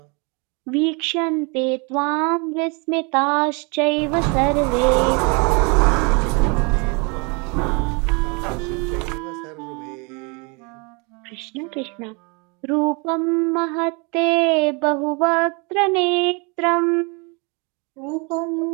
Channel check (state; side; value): quieter; left; 31.5 dB